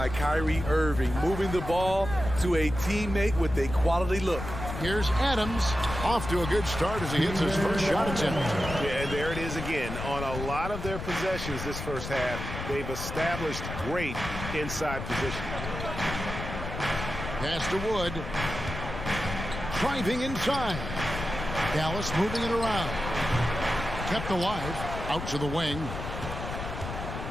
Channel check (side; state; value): left; noise; rumble, 7 dB below the sound